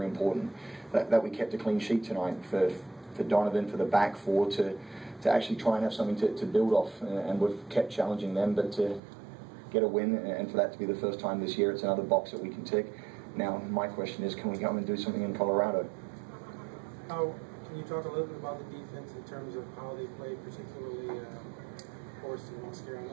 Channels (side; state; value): left; drops out; at 9.0 s